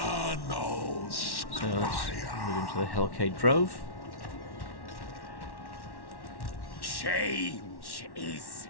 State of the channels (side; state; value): right; late; 1.1 ms